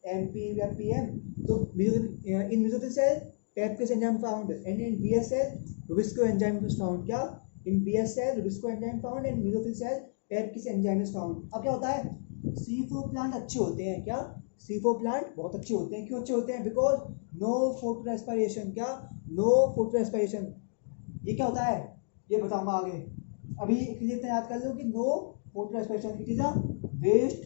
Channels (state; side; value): silent; right; digital silence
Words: MP या PM। तो in mesophyll cell PEPcase enzyme found and in BS cell rubisco enzyme is found, क्या in BS cell rubisco enzyme found and mesophyll cell PEPcase enzyme is found. अब क्या होता है, C4 प्लांट अच्छे होते हैं, क्या C4 प्लांट बहुत अच्छे होते हैं, क्यों अच्छे होते हैं, बिकॉज नो फोटो रेस्पिरेशन, क्या नो फोटो रेस्पिरेशन। ये क्या होता है ये बताऊंगा आगे, अभी इतना याद कर लो कि no photo respiration it is a